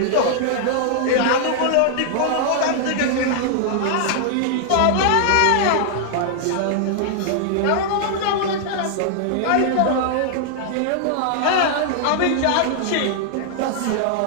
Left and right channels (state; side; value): different; both; correlation -0.01